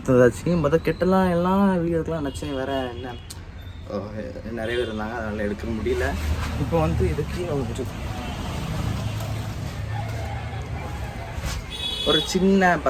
மொதல் கெட்டெல்லாம் எல்லாம் வீடியோக்கெலாம் நினச்சேன், வேறு என்ன நிறைய பேர் இருந்தாங்க, அதனால் எடுக்க முடியல. இப்போ வந்து இதுக்கு ஒரு சின்ன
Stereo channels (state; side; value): identical; both; correlation 1.00